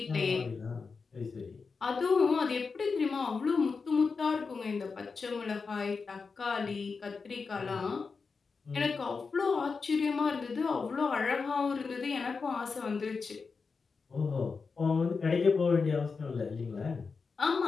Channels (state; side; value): quieter; right; 4.8 dB